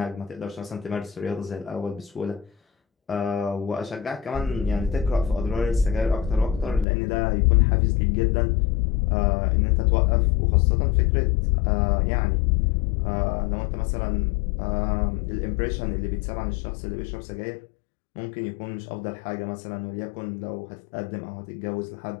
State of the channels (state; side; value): drops out; right; at 6.9 s